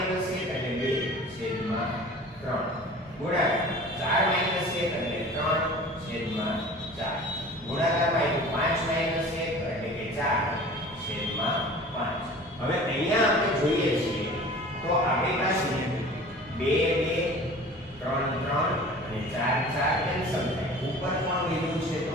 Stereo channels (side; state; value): both; normal; correlation 0.42